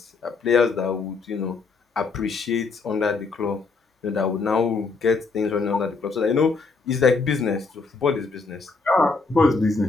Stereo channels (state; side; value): quieter; right; 4.4 dB